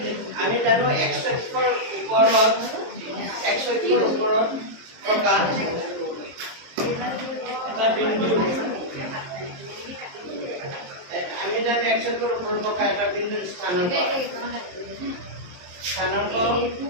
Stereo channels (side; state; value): left; late; 23 ms